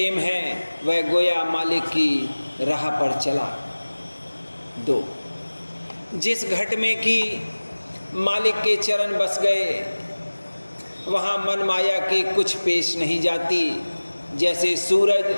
है वह गोया मालिक की राह पर चला। 2 जिस घट में कि मालिक के चरण बस गए, वहाँ मन माया की कुछ पेश नहीं जाती। जैसे सूरज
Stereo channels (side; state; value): both; inverted; correlation -1.00